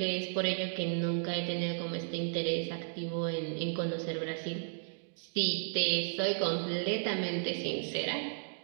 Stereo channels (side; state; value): left; silent; digital silence